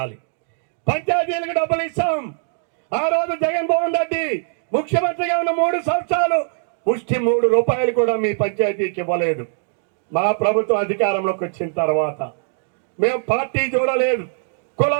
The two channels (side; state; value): left; silent; digital silence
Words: పంచాయతీలకు డబ్బులు ఇస్తాం. ఆ రోజు జగన్మోహన్ రెడ్డి ముఖ్యమంత్రిగా ఉన్న 3 సంవత్సరాలు పుష్టి ₹3 కూడా మీ పంచాయతీకి ఇవ్వలేదు. మా ప్రభుత్వం అధికారంలోకి వచ్చిన తర్వాత మేము పార్టీ చూడలేదు,